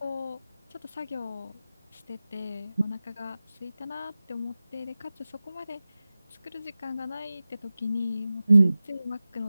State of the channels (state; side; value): inverted; both; correlation -0.96